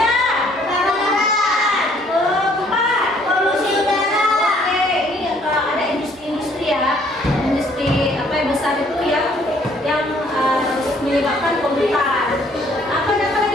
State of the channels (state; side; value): normal; both; correlation 0.62